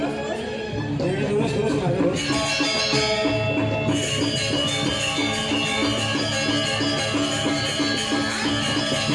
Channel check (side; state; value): both; identical; correlation 1.00